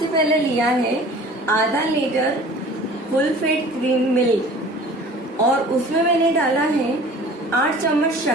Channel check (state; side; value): normal; both; correlation 0.45